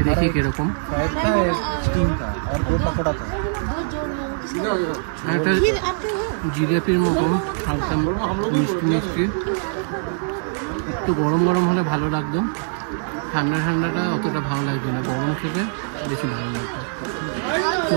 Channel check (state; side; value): silent; left; 64 dB below the other